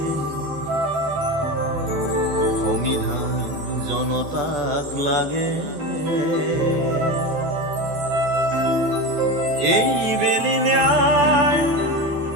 সংবিধান জনতাক লাগে এই বেলি ন্যায়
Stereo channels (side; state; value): left; late; 14 ms